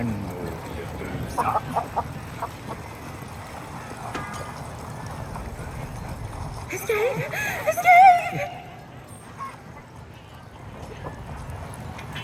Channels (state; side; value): identical; both; correlation 1.00